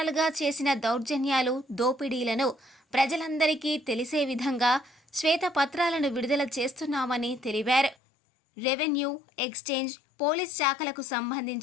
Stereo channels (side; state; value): right; drops out; at 8.0 s